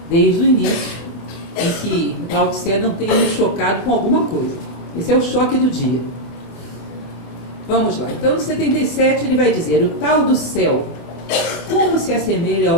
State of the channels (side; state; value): right; late; 25 ms